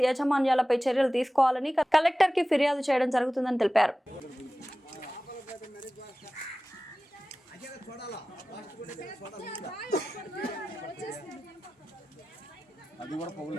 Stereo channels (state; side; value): normal; both; correlation 0.96